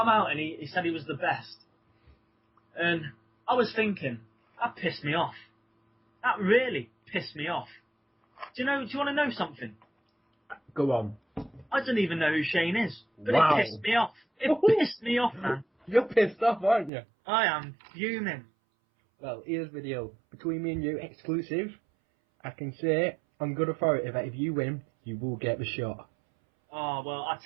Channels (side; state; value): left; drops out; at 16.9 s